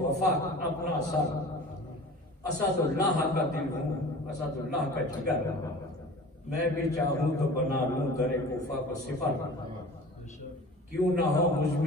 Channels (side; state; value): both; normal; correlation 0.40